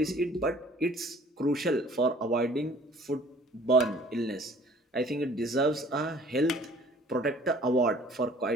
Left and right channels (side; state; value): both; normal; correlation 0.52